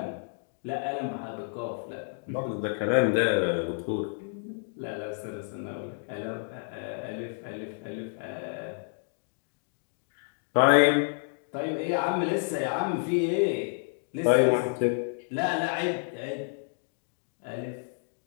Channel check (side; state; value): right; silent; digital silence